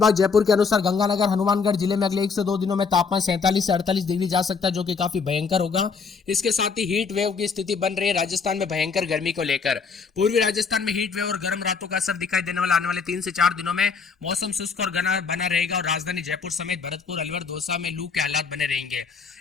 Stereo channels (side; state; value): right; quieter; 5.3 dB